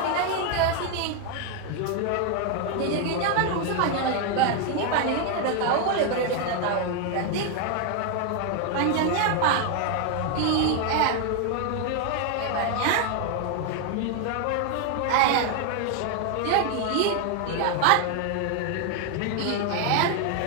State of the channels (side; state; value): both; different; correlation 0.01